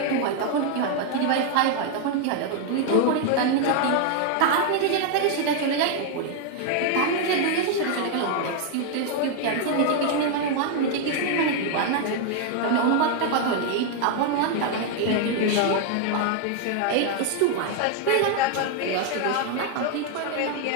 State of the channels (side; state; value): both; different; correlation 0.00